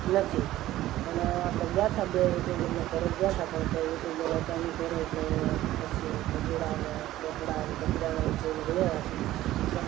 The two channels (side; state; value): left; quieter; 14.9 dB